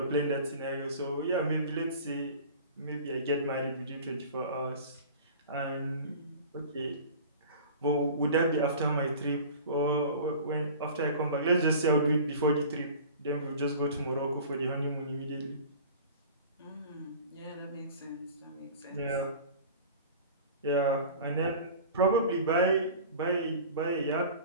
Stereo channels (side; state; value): both; inverted; correlation -0.40